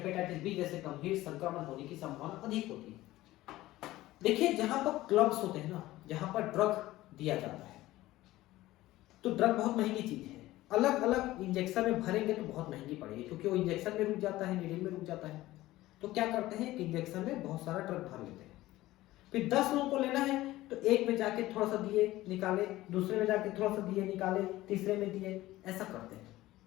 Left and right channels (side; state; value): right; quieter; 16.8 dB